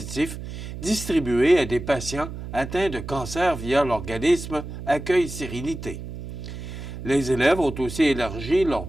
distribués à des patients atteints de cancer via l'organisme Accueil Sérénité. Les élèves ont aussi élargi leur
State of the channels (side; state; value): right; noise; hum, 9 dB below the sound